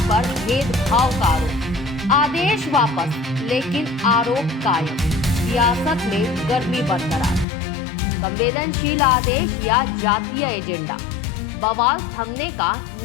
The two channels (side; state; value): right; drops out; at 7.5 s